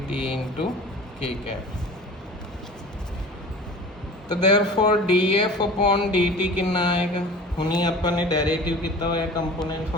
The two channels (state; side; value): normal; both; correlation 0.41